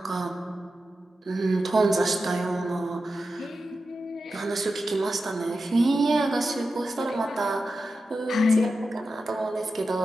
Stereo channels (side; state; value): both; normal; correlation 0.91